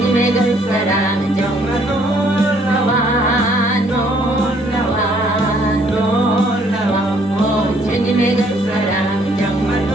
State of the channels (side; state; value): both; normal; correlation 0.64